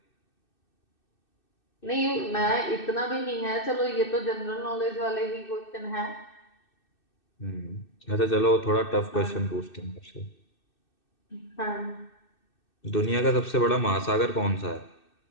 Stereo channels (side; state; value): right; late; 2.6 ms